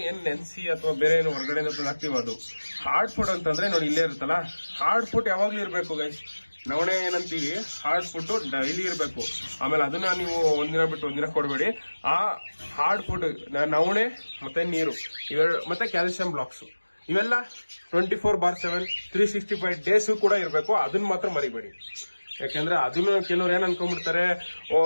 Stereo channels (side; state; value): both; inverted; correlation -1.00